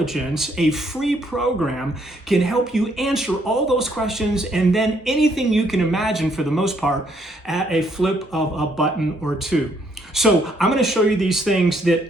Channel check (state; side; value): normal; both; correlation 0.70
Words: a free program, can help you answer all those questions and then anything you can imagine for the most part at a flip of a button or two. So I'm going to show you these things